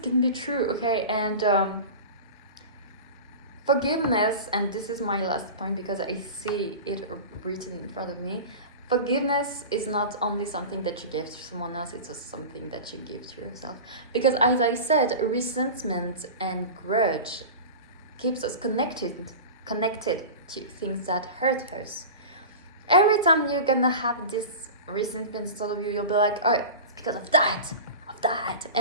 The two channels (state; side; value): inverted; both; correlation -0.31